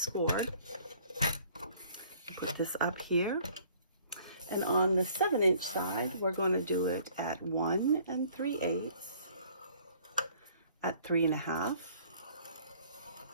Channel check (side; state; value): both; inverted; correlation -0.57